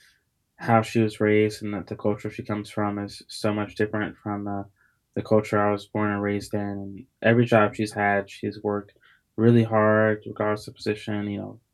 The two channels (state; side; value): identical; both; correlation 1.00